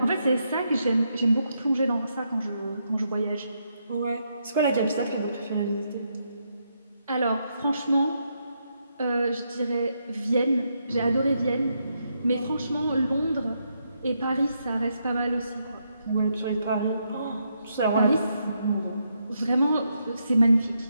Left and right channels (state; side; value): inverted; both; correlation -0.80